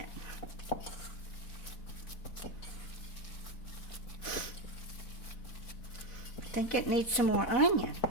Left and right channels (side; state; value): right; late; 4.1 ms